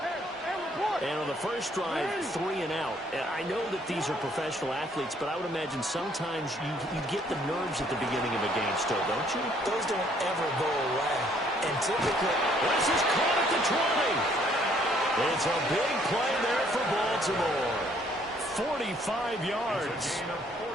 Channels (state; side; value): normal; both; correlation 0.64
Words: And on the first drive, 3 and out. And I know that these are professional athletes, but I would imagine sometimes you get the nerves at the beginning of a game still, don't you? Those don't ever go away. And typically, this is caught at the 20. It's a big play there for Baltimore. 45 yards.